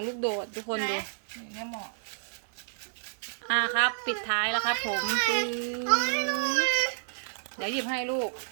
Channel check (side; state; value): left; silent; digital silence